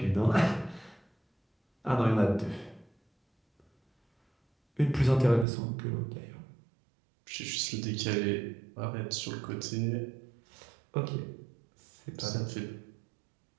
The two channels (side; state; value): left; drops out; at 5.5 s